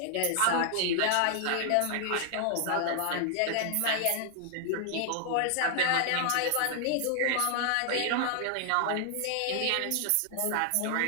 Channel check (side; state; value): both; different; correlation 0.00